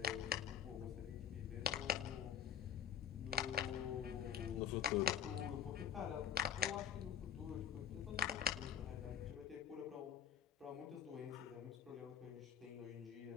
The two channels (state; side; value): quieter; right; 9.1 dB